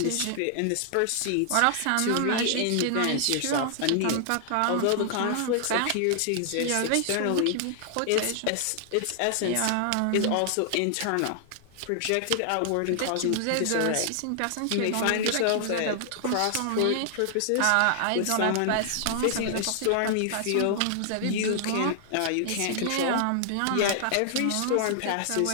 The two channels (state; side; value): different; both; correlation -0.01